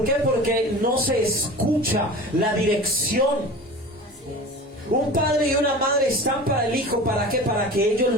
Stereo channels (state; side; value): normal; both; correlation 0.36